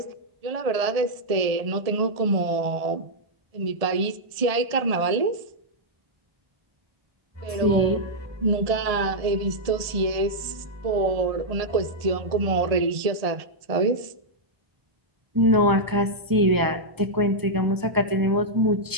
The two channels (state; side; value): late; left; 1.7 ms